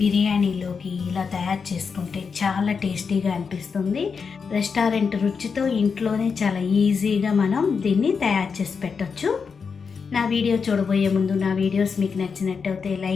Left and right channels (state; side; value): quieter; right; 5.6 dB